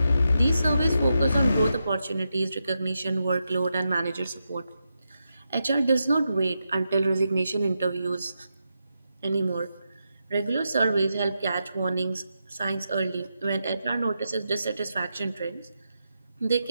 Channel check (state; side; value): inverted; both; correlation -0.86